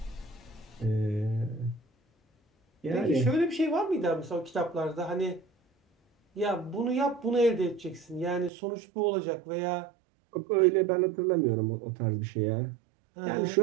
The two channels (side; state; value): left; drops out; at 8.5 s